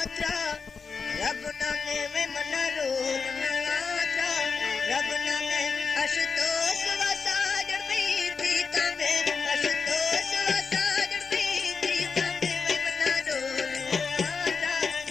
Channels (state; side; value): quieter; right; 5.2 dB